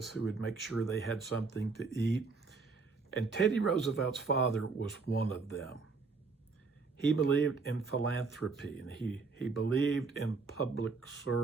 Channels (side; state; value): left; quieter; 4.4 dB